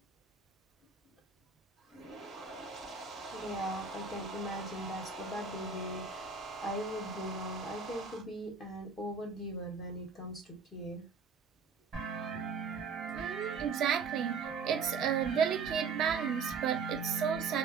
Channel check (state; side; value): quieter; left; 5.3 dB